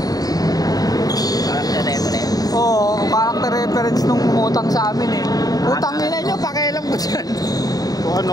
Character reference. Oo, character reference nung umutang sa amin eh. Utang nila nyo, pakialam ko dyan. Kung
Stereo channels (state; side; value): late; right; 0.18 ms